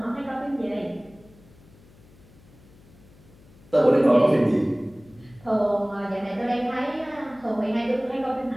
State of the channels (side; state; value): left; noise; hum, 25 dB below the sound